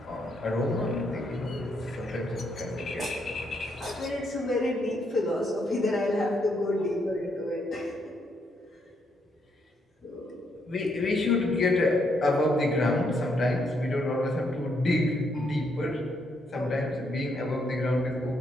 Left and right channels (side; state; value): both; normal; correlation 0.75